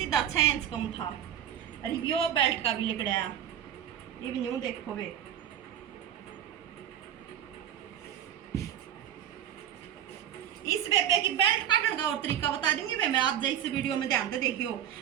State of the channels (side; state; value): left; quieter; 10.3 dB